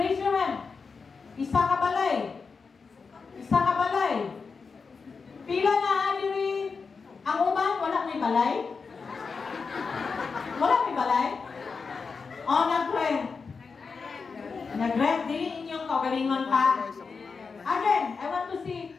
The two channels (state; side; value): quieter; right; 5.0 dB